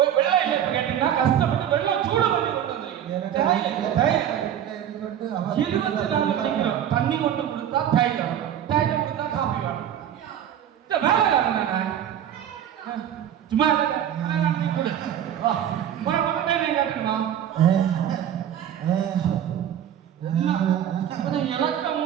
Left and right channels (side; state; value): left; quieter; 10.1 dB